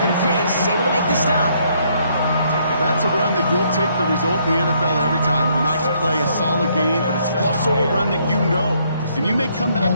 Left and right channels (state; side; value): inverted; both; correlation -0.70